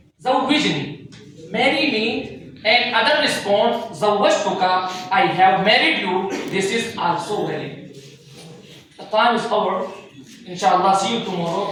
Zawwijni, marry me, and other responds, Zawwajtuka, I have married you, this is also valid. The time is over. Inshallah, see you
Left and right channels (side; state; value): both; identical; correlation 1.00